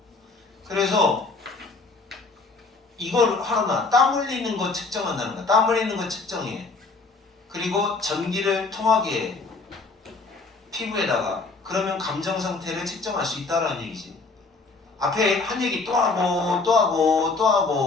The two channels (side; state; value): right; quieter; 3.9 dB